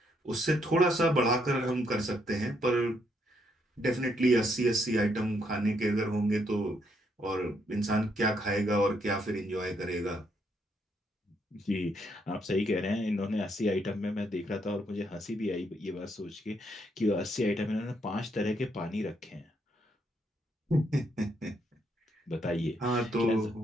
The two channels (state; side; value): normal; both; correlation 0.74